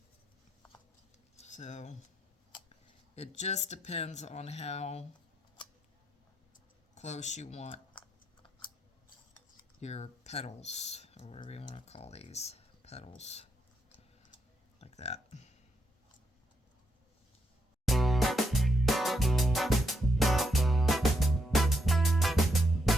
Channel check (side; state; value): both; normal; correlation 0.79